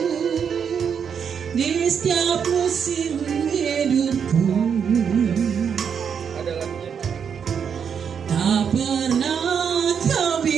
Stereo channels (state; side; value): quieter; left; 7.2 dB